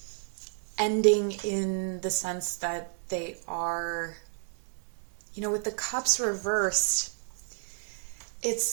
ending in the sense that they are, with the cups reversed,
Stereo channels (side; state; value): left; silent; digital silence